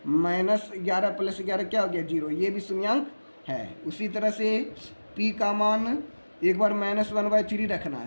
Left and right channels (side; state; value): both; inverted; correlation -1.00